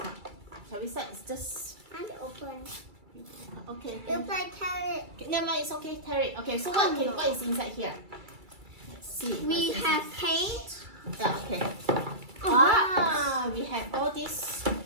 Shall we start? It's just I'm open. okay. It's like carrot. Okay, never mind, it's okay, tear it. Okay, so what is inside here? Let's see. We what's have inside. paint. Yeah, okay. We have all these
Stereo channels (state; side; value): late; left; 2.3 ms